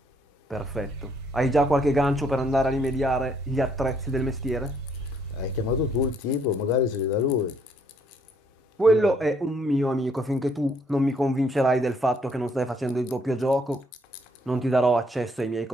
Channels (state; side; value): normal; both; correlation 0.68